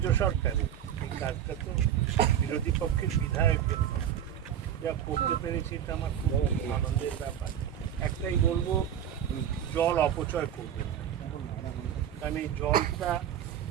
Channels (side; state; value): left; quieter; 9.7 dB